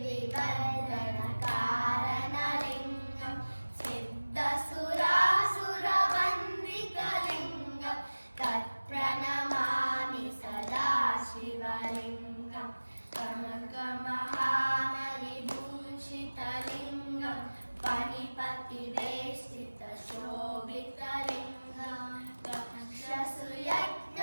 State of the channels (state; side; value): inverted; both; correlation -1.00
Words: सिद्धसुरासुरवन्दितलिङ्गं तत्प्रणमामि सदा शिवलिङ्गं कनकमहामणिभूषितलिङ्गं फणिपतिवेष्टितशोभितलिङ्गं